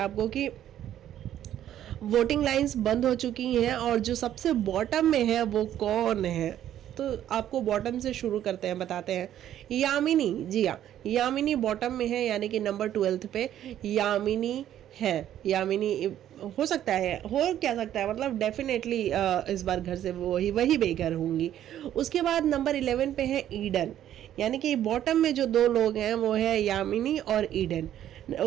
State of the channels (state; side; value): quieter; left; 11.4 dB